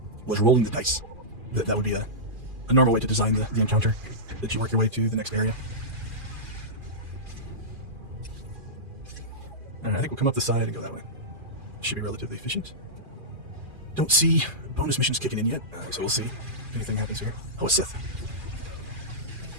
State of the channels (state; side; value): late; left; 2.4 ms